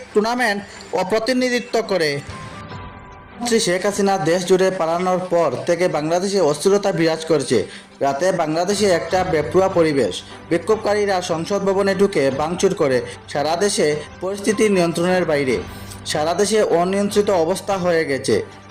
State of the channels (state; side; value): identical; both; correlation 1.00